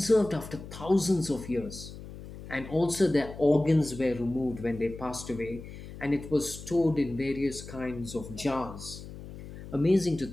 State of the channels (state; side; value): noise; left; hum, 13 dB below the sound